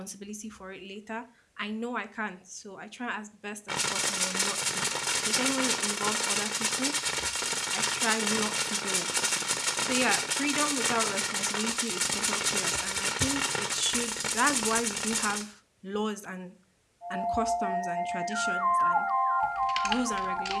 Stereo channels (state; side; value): identical; both; correlation 1.00